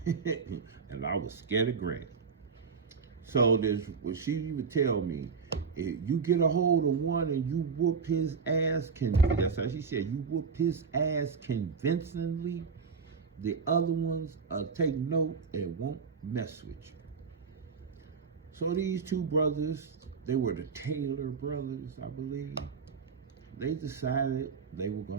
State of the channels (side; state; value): left; quieter; 5.4 dB